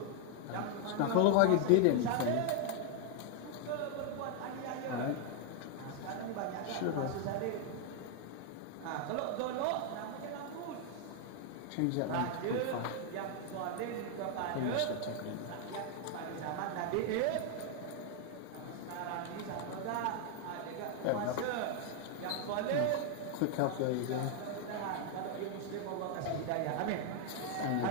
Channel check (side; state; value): both; different; correlation 0.00